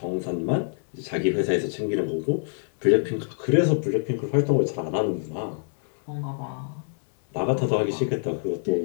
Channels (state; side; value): silent; right; digital silence